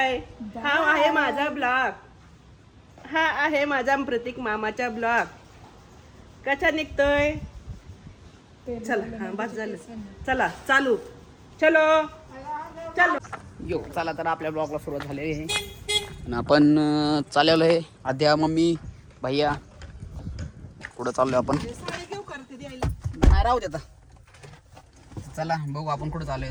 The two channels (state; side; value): identical; both; correlation 1.00